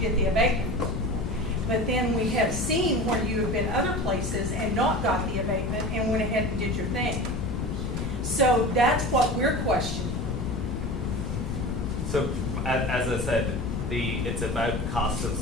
the abatement. But then we have seen where you have been other places and not got the abatement and went ahead and did your thing. So that's what we're questioning. So, as I said, it's about cost of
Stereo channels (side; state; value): left; noise; rumble, 4 dB below the sound